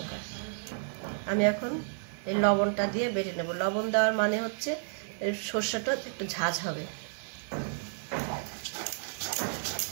আমি এখন এই লবণটা দিয়ে বেটে নেব। লবণ দেওয়ার মানে হচ্ছে এই সর্ষেটা একটু ঝাঁঝ হবে।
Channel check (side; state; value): left; silent; 57 dB below the other